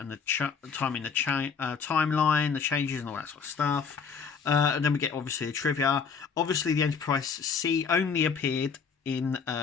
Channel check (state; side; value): quieter; right; 5.9 dB